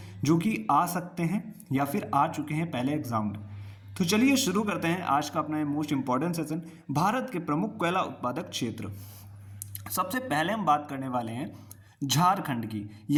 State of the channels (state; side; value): identical; both; correlation 1.00